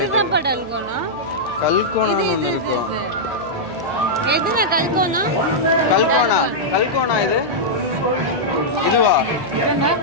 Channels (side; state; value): right; noise; hum, 17 dB below the sound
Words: படல்கோனா. கல்கோனா ஒன்னு இருக்கும். எதுனா கல்கோனா? கல்கோனா இது. இதுவா?